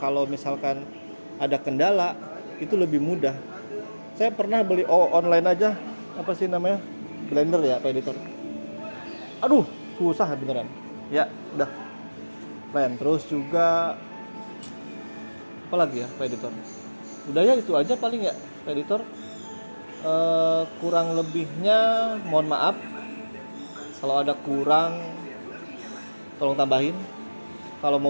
misalkan ada kendala, itu lebih mudah. Saya pernah beli online aja, blender ya Pak Editor. Aduh, susah beneran. Ya, udah. Terus juga apa lagi ya Pak Editor? Udah ya, itu aja paling ya Pak Editor. Kurang lebihnya mohon maaf. Kalau ada kurang tolong tambahin. Kalau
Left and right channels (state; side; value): inverted; both; correlation -1.00